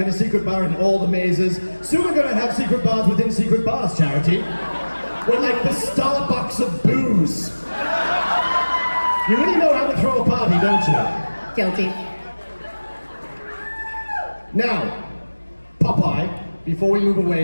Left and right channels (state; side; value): inverted; both; correlation -1.00